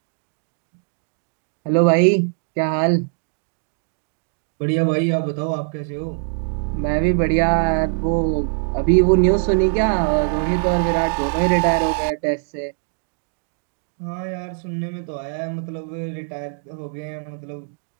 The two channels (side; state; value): left; silent; digital silence